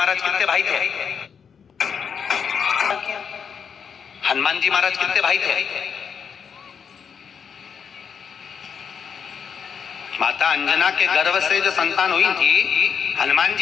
कितने भाई थे? हनुमान जी महाराज कितने भाई थे? माता अंजना के गर्भ से जो संतान हुई थी, हनुमान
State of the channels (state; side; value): quieter; right; 6.8 dB